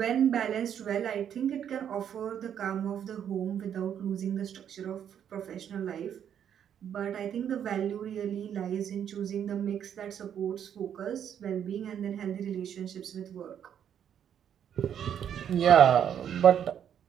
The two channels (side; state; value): left; quieter; 9.1 dB